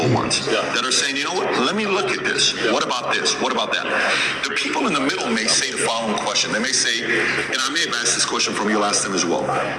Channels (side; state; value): both; identical; correlation 1.00